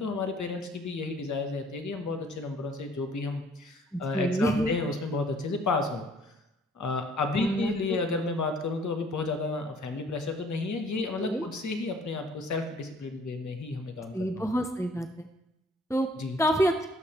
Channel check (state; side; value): normal; both; correlation 0.58